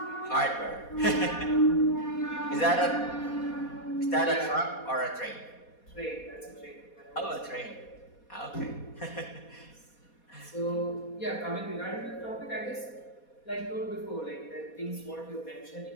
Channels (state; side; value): late; right; 4.2 ms